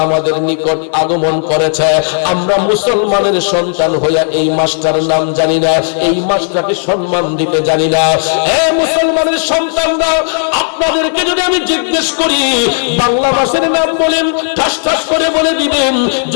আমাদের নিকট আগমন করেছে, আমরা মুসলমানের সন্তান হইয়া এই মাসটার নাম জানি না, এই মাসটাকে সম্মান দিতে জানি না। এ মুসলমানের সন্তানরা, আপনাদেরকে যদি আমি জিজ্ঞেস করি বাংলা মাসের নাম বলেন, ঠাস ঠাস করে বলে দিবেন,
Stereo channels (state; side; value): silent; right; 72 dB below the other